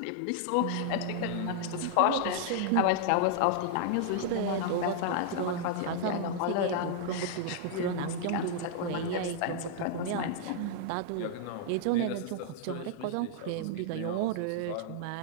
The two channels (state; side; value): different; both; correlation -0.01